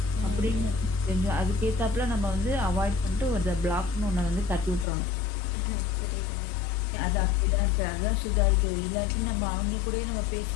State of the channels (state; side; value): drops out; right; at 4.9 s